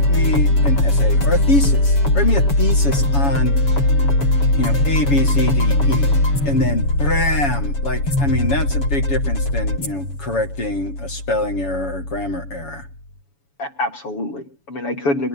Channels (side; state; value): right; late; 7.1 ms